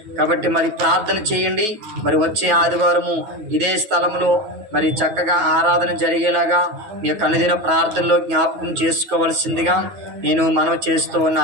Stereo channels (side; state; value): left; late; 9.2 ms